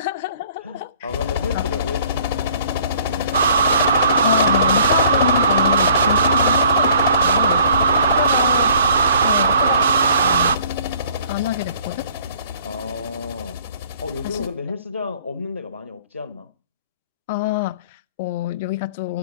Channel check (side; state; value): both; inverted; correlation -0.56